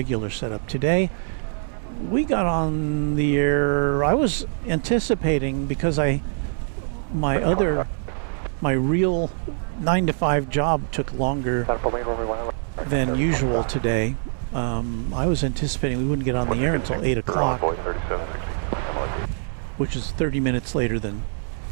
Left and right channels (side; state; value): left; silent; 63 dB below the other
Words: setup. Today, we got on the air, I was anticipating, because my real 9-to-5 job took longer than usual today. I was anticipating we wouldn't get on the air until 8 o'clock, which is 30 minutes later than